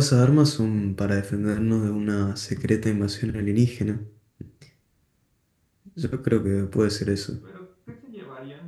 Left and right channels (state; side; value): identical; both; correlation 1.00